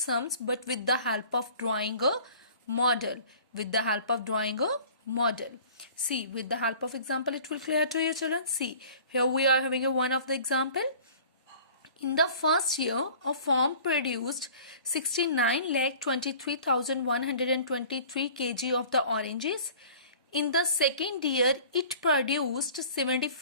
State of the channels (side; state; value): both; inverted; correlation -0.46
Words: but with the help of drawing a model. See, with the help of example it will clear to you children. See, here we are having a one of the example. In the first year, a farm produced 69,23,123 kg of the oranges. In the second year, it produced